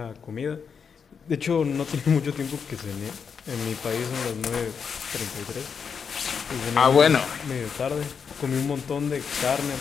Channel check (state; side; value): quieter; right; 6.4 dB